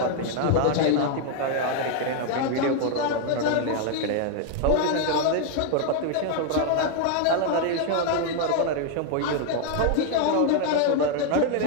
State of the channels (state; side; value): different; both; correlation 0.00